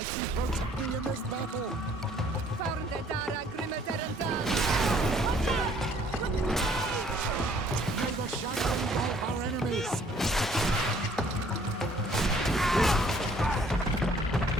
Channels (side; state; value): both; normal; correlation 0.60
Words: protect me in this battle! May the shadow engulf our enemies!